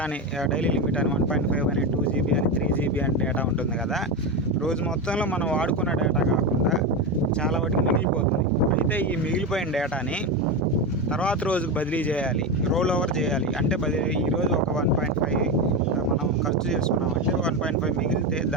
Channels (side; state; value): both; normal; correlation 0.16